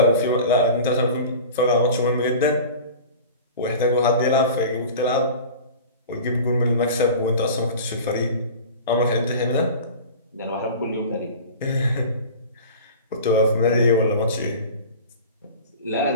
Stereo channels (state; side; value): inverted; both; correlation -0.37